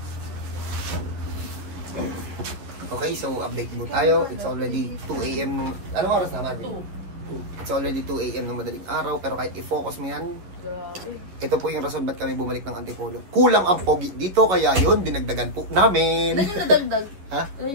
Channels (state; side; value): late; left; 11 ms